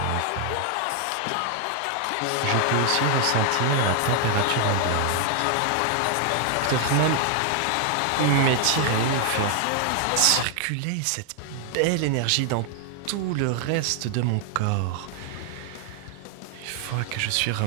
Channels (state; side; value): different; both; correlation 0.00